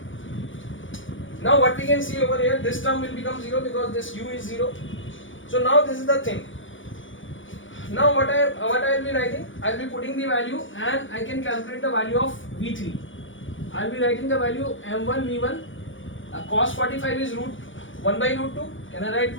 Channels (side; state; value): right; late; 0.56 ms